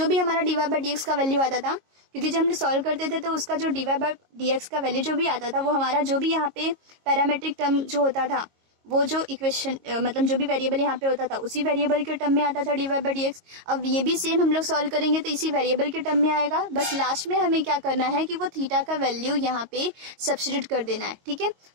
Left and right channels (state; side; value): late; left; 22 ms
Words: भी हमारा dy/dx का वैल्यू आता था, क्योंकि जब हम सॉल्व करते थे तो उसका जो dy/dx का वैल्यू जो भी आता था वो हमारा जो भी यहाँ पे पैरामेट्रिक टर्म जो होता था, वो जो इक्वेशन मतलब जो भी वेरिएबल यहाँ पे होता था उसी वेरिएबल के टर्म में आता था dy/dx। अब ये भी सेम हम लोग सॉल्व करेंगे तो इसी वेरिएबल के टर्म में आएगा। बस लास्ट में हमें क्या करना है कि वो थीटा का वैल्यू यहाँ पे सब्स्टिट्यूट कर देना है, ठीक है।